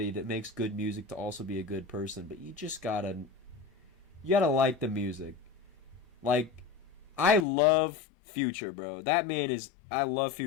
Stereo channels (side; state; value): right; drops out; at 7.5 s